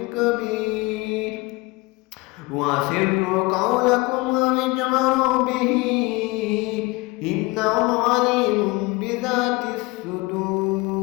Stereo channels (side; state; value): right; quieter; 23.8 dB